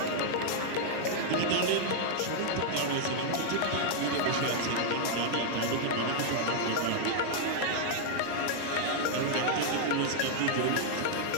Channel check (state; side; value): different; both; correlation -0.01